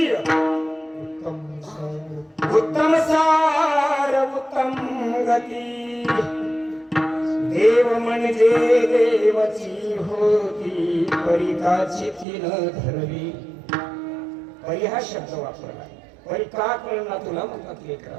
उत्तम सार उत्तम गती. देव म्हणजे देवाची होती. परिकाची तीन धरली. परी हा शब्द वापरला. परी का कळला तुला म्हणतात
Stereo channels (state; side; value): drops out; left; at 12.2 s